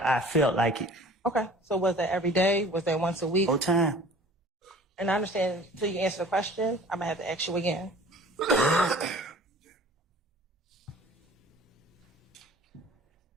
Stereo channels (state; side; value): normal; both; correlation 0.47